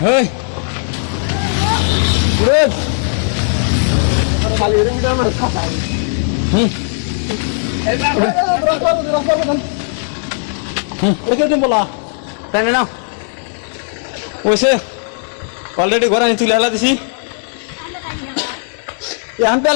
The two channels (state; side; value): silent; right; 69 dB below the other